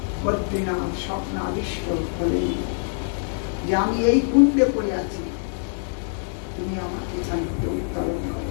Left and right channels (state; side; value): silent; right; digital silence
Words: বদ্রীনাথ স্বপ্নাদিষ্ট হলেন যে আমি এই কুণ্ডে পড়ে আছি, তুমি আমাকে এখান থেকে উত্তোলন করো।